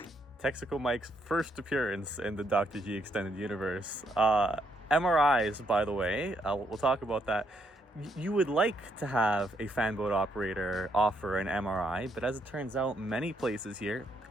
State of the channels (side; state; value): both; normal; correlation 0.75